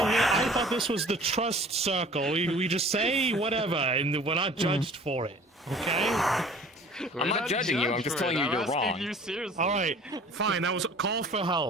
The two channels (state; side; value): normal; both; correlation 0.48